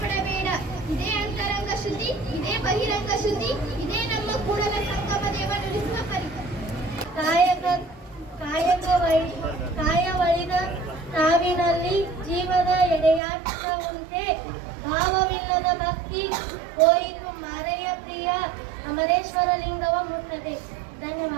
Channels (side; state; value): left; drops out; at 13.2 s